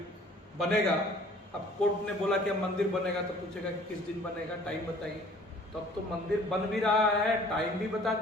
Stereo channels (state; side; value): normal; both; correlation 0.53